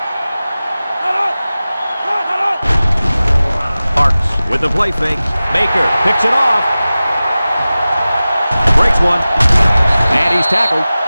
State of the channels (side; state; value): both; inverted; correlation -0.97